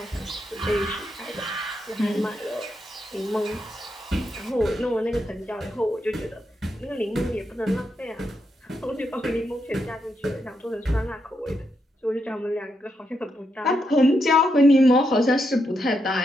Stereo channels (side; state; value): both; normal; correlation 0.82